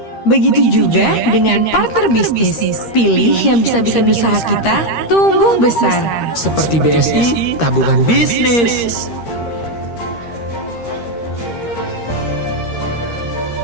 Begitu juga dengan partner bisnis. Pilih yang bisa bikin usaha kita tumbuh besar. Seperti BSI, tabungan bisnis.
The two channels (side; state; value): right; late; 13 ms